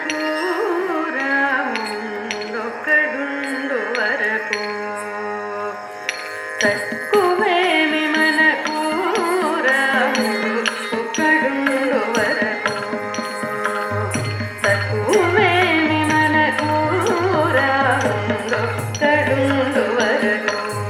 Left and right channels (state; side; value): identical; both; correlation 1.00